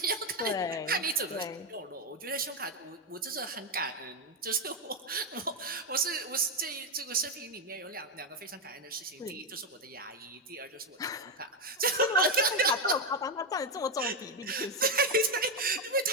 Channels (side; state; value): both; normal; correlation 0.06